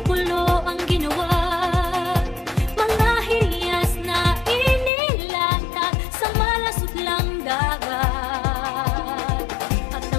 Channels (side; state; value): right; drops out; at 4.9 s